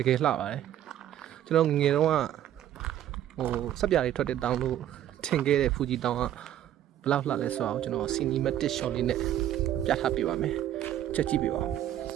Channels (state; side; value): quieter; left; 11.7 dB